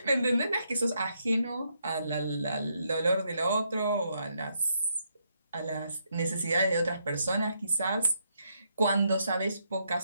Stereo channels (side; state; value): both; inverted; correlation -0.77